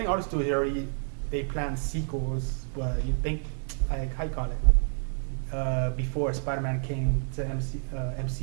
all the studios they plan sequels. You think like how you call it? Before Spider-Man came to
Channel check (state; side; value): silent; left; 59 dB below the other